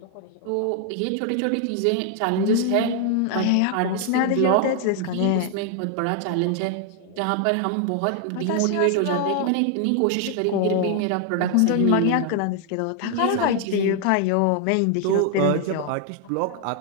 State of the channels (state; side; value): different; both; correlation 0.00